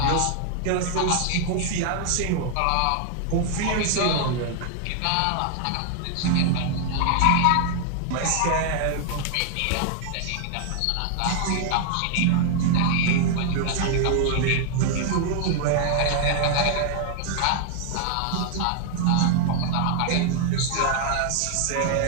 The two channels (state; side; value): different; both; correlation 0.00